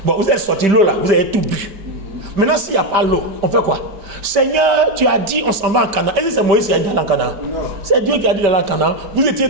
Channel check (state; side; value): late; left; 5.1 ms